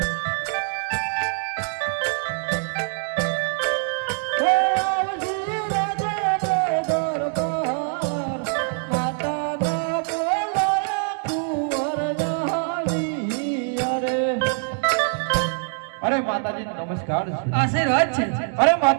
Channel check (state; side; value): silent; left; 59 dB below the other